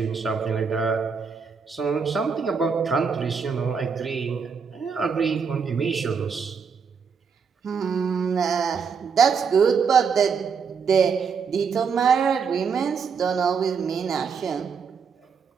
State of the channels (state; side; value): quieter; left; 6.0 dB